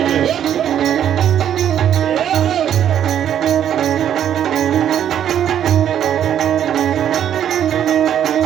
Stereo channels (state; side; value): quieter; left; 9.9 dB